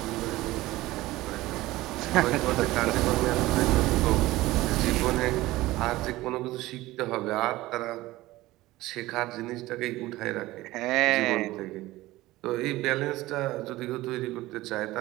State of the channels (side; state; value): left; quieter; 18.0 dB